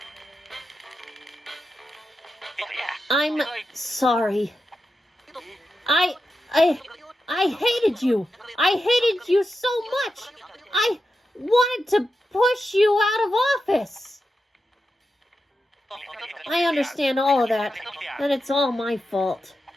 I'm sorry. I hated you. I hated you so much. I wanted to push you out of office. I understand all of that, and it's all my fault.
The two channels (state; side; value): normal; both; correlation 0.89